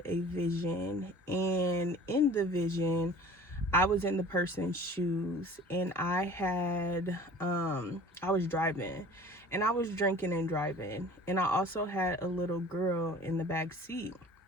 a vision, and in the vision I was in the person's shoes, and I was driving, and I was drinking and driving, and I also had a little girl in the back seat.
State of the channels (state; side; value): normal; both; correlation 0.45